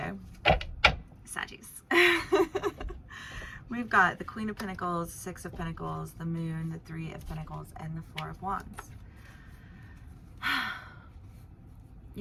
Saggies. We've got the Queen of Pentacles, 6 of Pentacles, the Moon, the 3 of Pentacles, and the 4 of Wands.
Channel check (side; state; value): both; identical; correlation 1.00